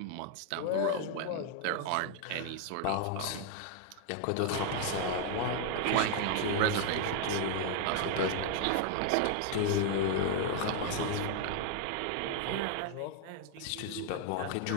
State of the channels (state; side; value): different; both; correlation 0.00